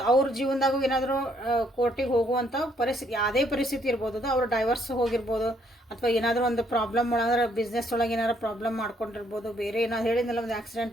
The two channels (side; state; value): both; normal; correlation 0.69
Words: ಅವ್ರ ಜೀವನದಾಗೂ ಏನಾದರೂ ಕೋರ್ಟಿಗೆ ಹೋಗುವಂಥ ಪರಿಸ್ಥಿತಿ, ಯಾವುದೇ ಪರಿಸ್ಥಿತಿ ಇರ್ಬೋದು ಅದು. ಅವ್ರು ಡೈವರ್ಸ್ ಹೋಗಿರ್ಬೋದು, ಅಥವಾ ಏನಾದರೂ ಒಂದು ಪ್ರಾಬ್ಲಮ್ ಒಳಗೆ ಬಿಸ್ನೆಸ್ ಒಳಗೆ ಏನಾದ್ರು ಪ್ರಾಬ್ಲಮ್ ಮಾಡ್ಕೊಂಡಿರ್ಬೋದು, ಬೇರೆ ಏನಾದ್ರು ಹೇಳಿದ್ನಲ್ಲ ಒಂದು